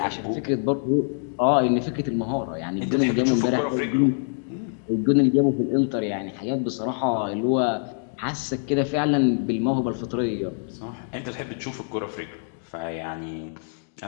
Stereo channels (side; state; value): right; silent; digital silence